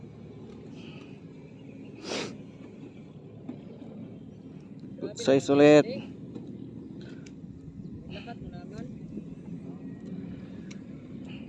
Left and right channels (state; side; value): identical; both; correlation 1.00